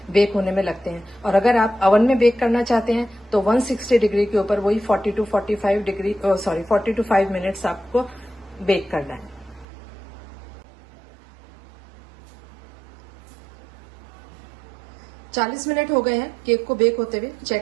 बेक होने में लगते हैं। और अगर आप अवन में बेक करना चाहते हैं तो 160 डिग्री के ऊपर वही 40 to 5 मिनट्स आपको बेक करना है। चालीस मिनट हो गए हैं केक को बेक होते हुए,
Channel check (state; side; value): drops out; left; at 9.7 s